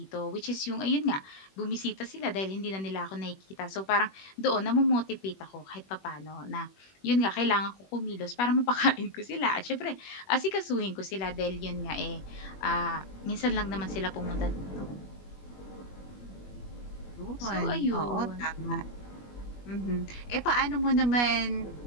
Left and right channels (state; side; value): late; right; 21 ms